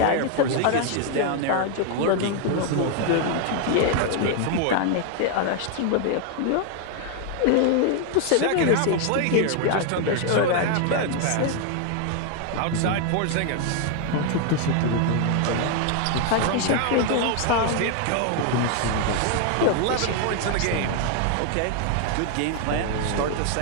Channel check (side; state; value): both; different; correlation 0.00